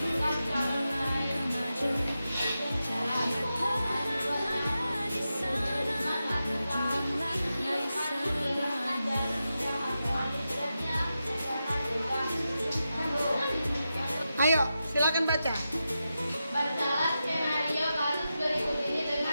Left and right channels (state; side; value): inverted; both; correlation -0.90